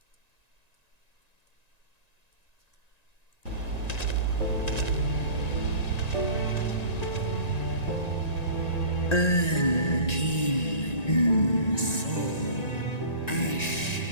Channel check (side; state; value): right; late; 1.9 ms